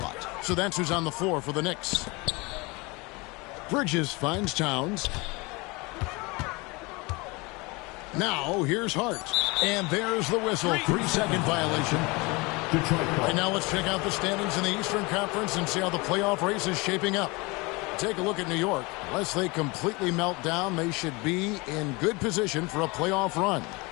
So that's who's on the floor for the Knicks. Bridges finds Towns. Now here's Hart. And there's the whistle. 3-second violation. And now let's check out the standings in the Eastern Conference and see how the playoff race is shaping up. Take a look at New York. Unless they completely melt down, they should be in good position for a playoff run.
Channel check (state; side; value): quieter; right; 25.7 dB